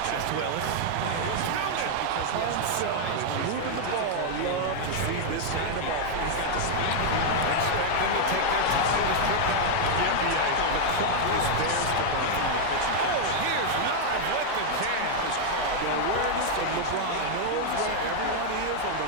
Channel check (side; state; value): both; different; correlation 0.00